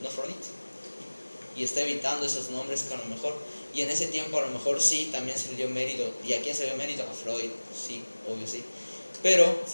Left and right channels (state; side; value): inverted; both; correlation -1.00